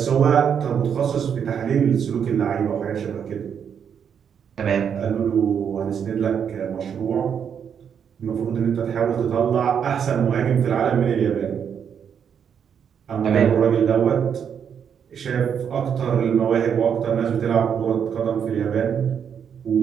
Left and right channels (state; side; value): quieter; left; 7.7 dB